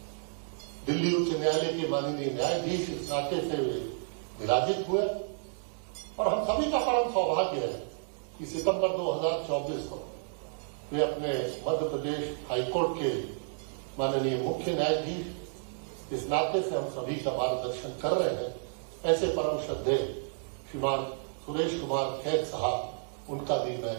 दिल्ली उच्च न्यायालय के माननीय न्यायाधीश इस नाते से विराजित हुए और हम सभी का परम सौभाग्य है कि सितंबर 2024 को वे अपने मध्य प्रदेश हाईकोर्ट के माननीय मुख्य न्यायाधीश इस नाते से हम सभी का मार्गदर्शन कर रहे हैं। ऐसे परम श्रद्धेय श्रीमान सुरेश कुमार खैर साहब, उनका भी मैं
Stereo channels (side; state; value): left; silent; digital silence